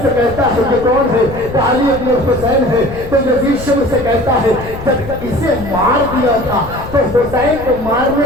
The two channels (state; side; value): noise; left; rumble, 12 dB below the sound